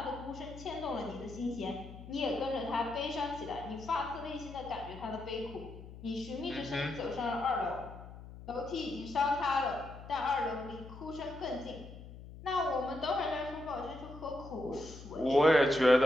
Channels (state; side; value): noise; left; hum, 14 dB below the sound